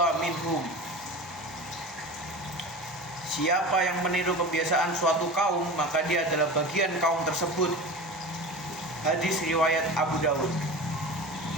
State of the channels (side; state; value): both; normal; correlation 0.32